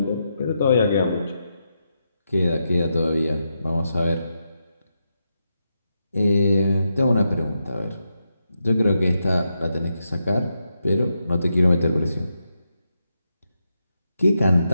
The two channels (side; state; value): both; inverted; correlation -0.85